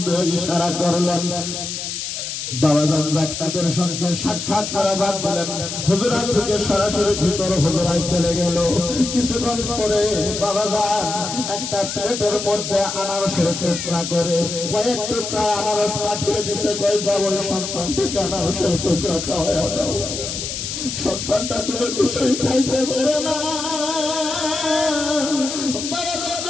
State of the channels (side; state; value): left; noise; hiss, 5 dB below the sound